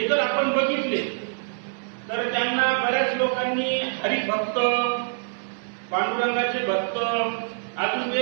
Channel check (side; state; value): left; silent; digital silence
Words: जर आपण बघितले तर त्यांना बऱ्याच लोकांनी हरिभक्त, पांडुरंगाचे भक्त अजून